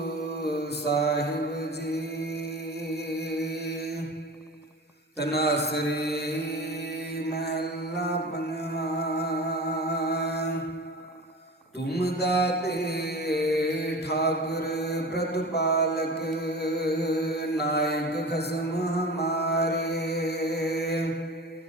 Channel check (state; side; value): normal; both; correlation 0.34